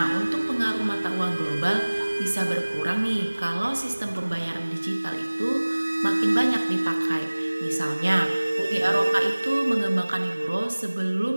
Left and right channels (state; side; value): inverted; both; correlation -1.00